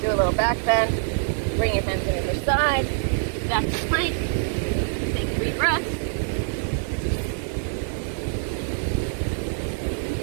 Do a little back bend. Bring your hands on either side. Back to plank. Take 3 breaths.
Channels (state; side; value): silent; left; 62 dB below the other